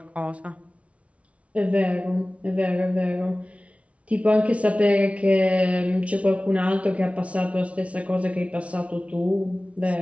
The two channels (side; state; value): left; late; 0.063 ms